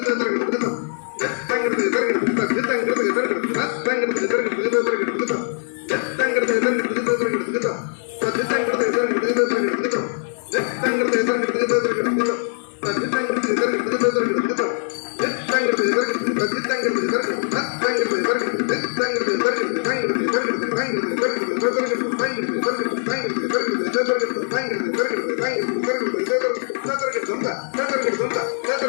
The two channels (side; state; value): right; silent; 61 dB below the other